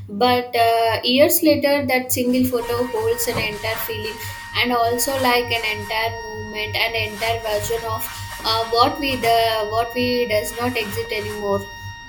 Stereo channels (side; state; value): both; identical; correlation 1.00